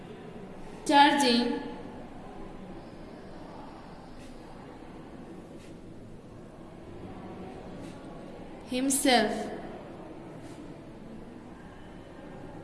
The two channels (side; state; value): both; identical; correlation 1.00